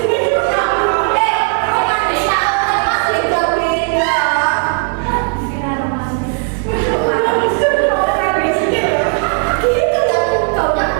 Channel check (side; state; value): left; quieter; 38.7 dB